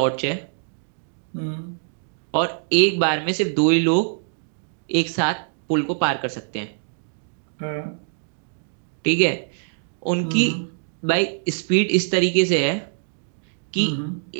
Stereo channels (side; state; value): left; silent; digital silence